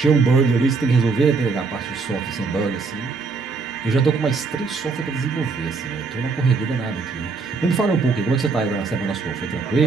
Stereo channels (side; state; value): left; quieter; 4.4 dB